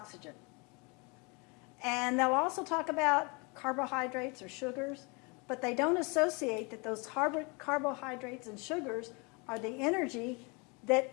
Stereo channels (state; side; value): quieter; right; 30.0 dB